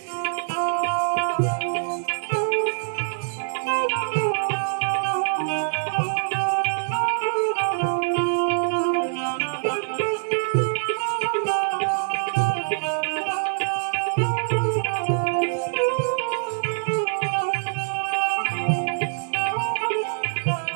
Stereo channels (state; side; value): silent; left; digital silence